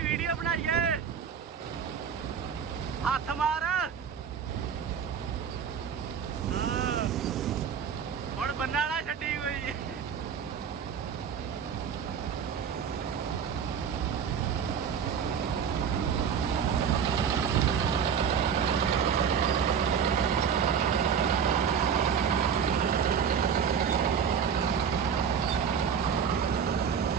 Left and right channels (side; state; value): left; quieter; 7.3 dB